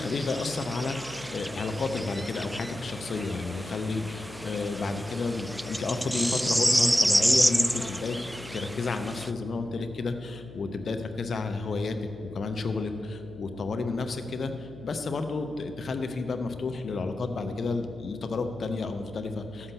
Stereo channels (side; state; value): left; noise; hum, 17 dB below the sound